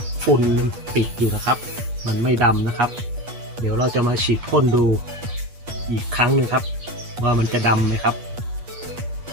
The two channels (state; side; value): late; left; 8.4 ms